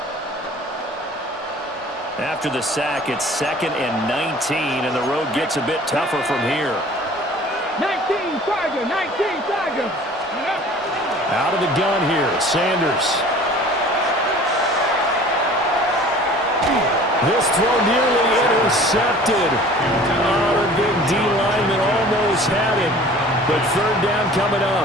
After the sack, it's 2nd and 19, and the road gets a bit tougher from here. 19 Tiger, 19 Tiger. Out of the gun here, Sanders. This throw nearly intercepted. Oh, the big D lineman almost had it, but 3rd down coming up.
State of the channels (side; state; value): both; normal; correlation 0.47